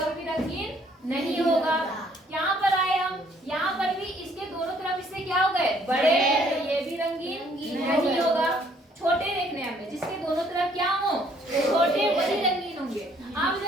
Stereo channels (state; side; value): normal; both; correlation 0.63